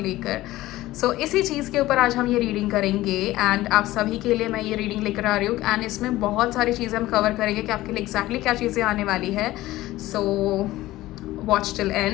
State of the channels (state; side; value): quieter; right; 16.8 dB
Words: सो इसी चीज़ के ऊपर आज हम ये रीडिंग करेंगे एंड आप सभी के लिए मैं ये रीडिंग लेकर आ रही हूँ। एंड इसमें बहुत सारी चीज़ें हम कवर करेंगे कि आपके लिए एग्जैक्टली क्या चीज़ें आने वाली है। So watch till